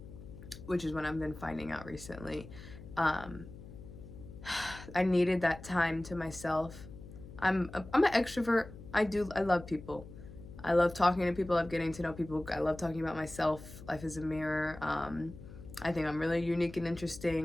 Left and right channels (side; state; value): left; noise; hum, 15 dB below the sound